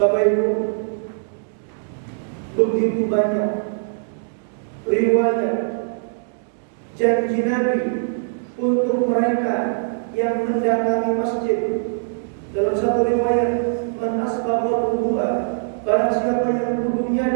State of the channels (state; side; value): silent; left; digital silence